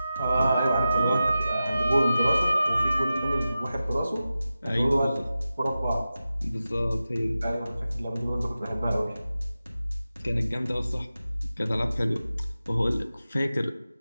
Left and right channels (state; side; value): inverted; both; correlation -0.94